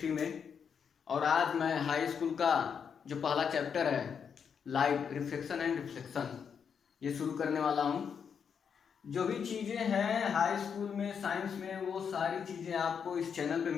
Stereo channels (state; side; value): quieter; right; 6.9 dB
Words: में। और आज मैं हाई स्कूल का जो पहला चैप्टर है लाइट, रिफ्लेक्शन एंड रिफ्लेक्शन, ये शुरू करने वाला हूँ। जो भी चीज़ें हैं हाई स्कूल में साइंस में, वो सारी चीज़ें आपको इस चैनल पे